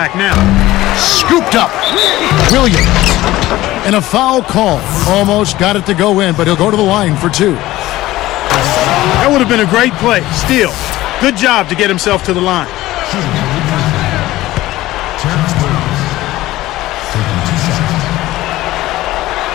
now. Scooped up. Williams. And a foul call. Almost got it to go in, but he'll go to the line for two. That would have been a great play. Still, good job to get himself to the line.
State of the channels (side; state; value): right; quieter; 16.7 dB